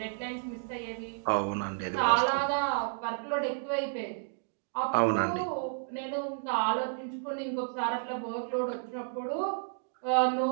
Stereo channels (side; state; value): left; silent; digital silence